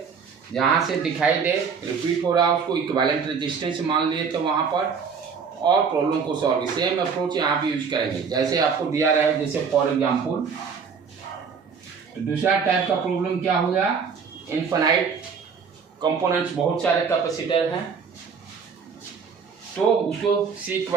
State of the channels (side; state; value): left; quieter; 5.9 dB